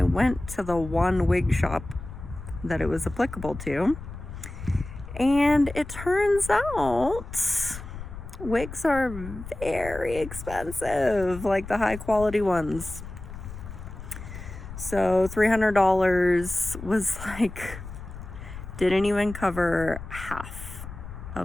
went to the one wig shop that it was applicable to, and it turns out wigs are very expensive, like the high quality ones. So $300 was like, didn't even cover half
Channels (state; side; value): noise; left; rumble, 11 dB below the sound